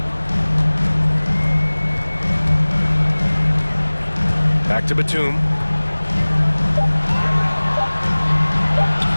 Back to Batum.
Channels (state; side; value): inverted; both; correlation -1.00